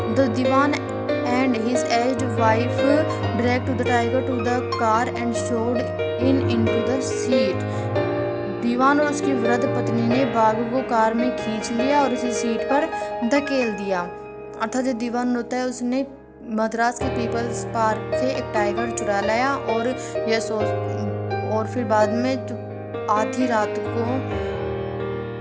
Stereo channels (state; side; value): identical; both; correlation 1.00